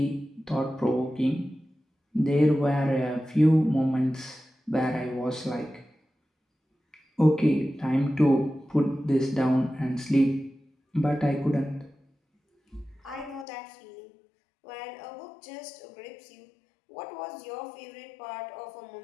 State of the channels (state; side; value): drops out; right; at 13.5 s